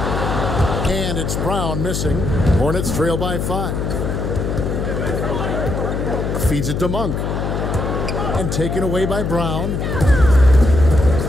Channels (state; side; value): noise; left; hum, 2 dB below the sound